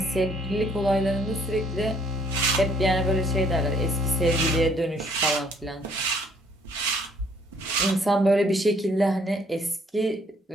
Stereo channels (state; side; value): normal; both; correlation 0.63